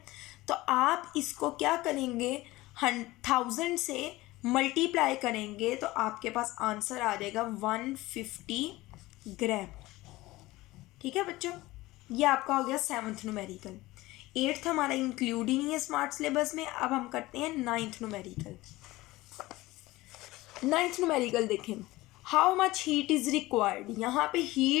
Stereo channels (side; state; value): right; quieter; 18.9 dB